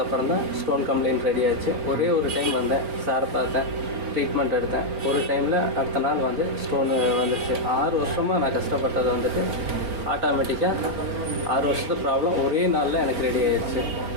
தான் ஸ்டோன் கம்ப்ளைண்ட் ரெடி ஆச்சு. ஒரே ஒரு டைம் வந்தேன், சாரை பார்த்தேன், ட்ரீட்மெண்ட் எடுத்தேன். ஒரு டைமில் அடுத்த நாள் வந்து ஸ்டோனு வந்துடுச்சு. 6 வருஷமாக நான் கஷ்டப்பட்டது வந்துட்டு ஆட்டோமேட்டிக்காக 6 வருஷத்து ப்ராப்ளம் ஒரே நாளில் எனக்கு ரெடி ஆகிடுச்சு.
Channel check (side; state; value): left; late; 4.6 ms